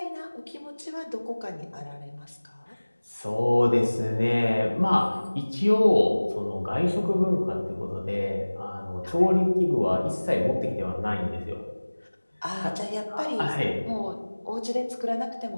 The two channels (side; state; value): both; inverted; correlation -1.00